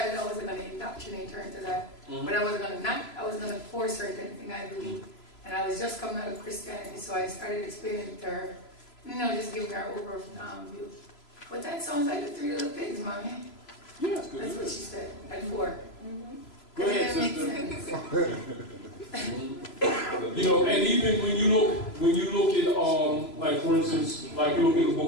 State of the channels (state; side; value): late; right; 3.0 ms